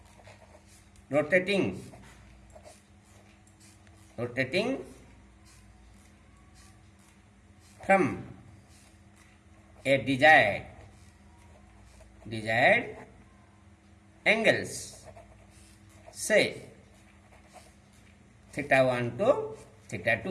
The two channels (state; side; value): identical; both; correlation 1.00